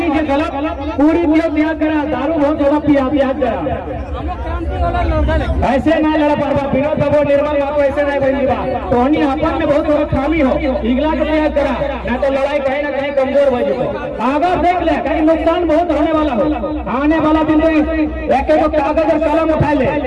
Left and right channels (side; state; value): both; identical; correlation 1.00